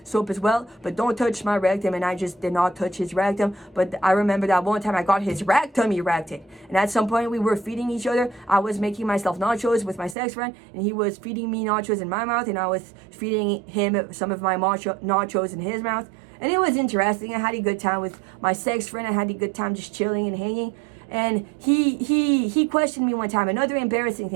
soap as well, but don't touch my rectum. And I just did not touch his rectum. But I remember that one time I got his rectum erected. And at some point we were feeding each other. I was making myself nachos with my sex friend and he was feeding me nachos in my mouth and I was feeding him some of my nachos in his mouth. And it was interesting. I had a good time with my sex friend. I had a good time just chilling and hanging. And he questioned me one time. Another embarrassing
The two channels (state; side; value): drops out; left; at 10.2 s